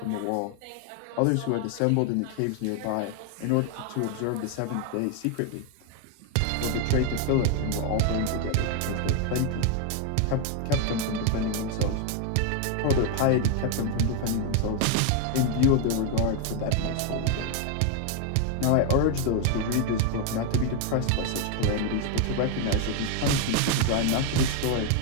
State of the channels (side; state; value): both; different; correlation 0.01